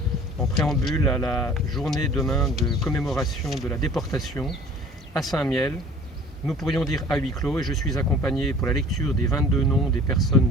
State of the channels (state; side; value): normal; both; correlation 0.49